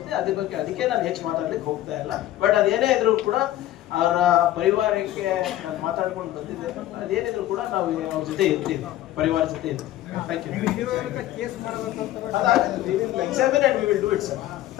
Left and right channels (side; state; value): right; quieter; 14.2 dB